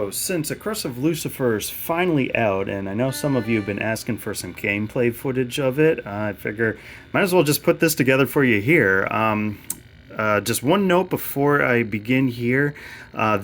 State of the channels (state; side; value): identical; both; correlation 1.00